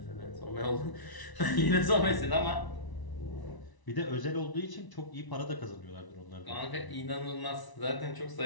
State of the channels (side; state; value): right; late; 1.0 ms